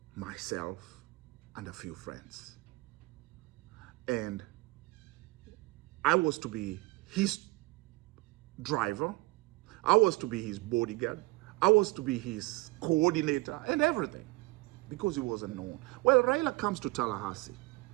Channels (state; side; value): quieter; left; 22.9 dB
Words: myself, and a few friends. And I was to be his driver. I was to be his bodyguard. I was to be his coordinator and everything, because he wasn't known. Well, Raila comes to Tallahassee.